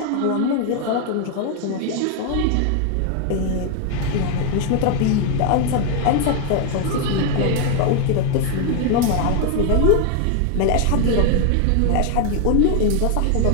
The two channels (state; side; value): different; both; correlation 0.01